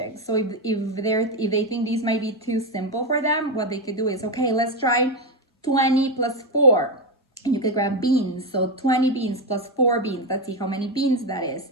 So if they think these might be too simple for them, what they could do is, okay, let's try 20 plus 4. And you could grab beans. So 20 beans plus 4 beans. Let's see how many beans that is.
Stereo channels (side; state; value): both; normal; correlation 0.10